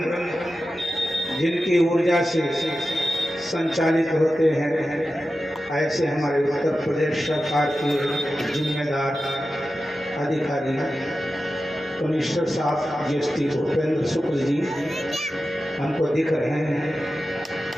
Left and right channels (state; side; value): normal; both; correlation 0.93